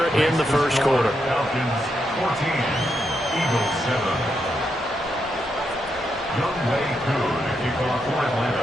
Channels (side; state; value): both; normal; correlation 0.82